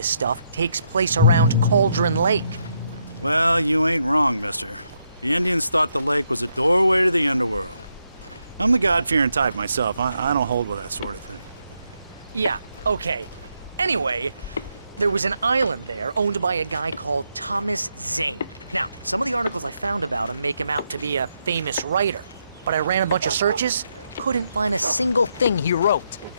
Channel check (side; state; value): both; inverted; correlation -0.79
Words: stuff takes place around Cauldron Lake. Well, you ain't wrong, mister. The Indians thought the lake was a doorway to the underworld. I'm the God-fearing type myself. I don't hold with that sort of thing. Yeah, okay. Anyway, there was an island there owned by a guy called Thomas Zane. Now, some of the articles I found about him make him out to be a famous writer, but I ran a bunch of searches, couldn't find a single thing he wrote.